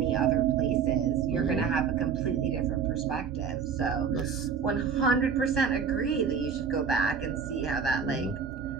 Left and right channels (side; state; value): left; quieter; 6.4 dB